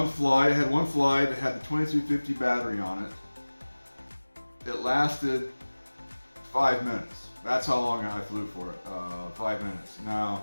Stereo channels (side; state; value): both; inverted; correlation -1.00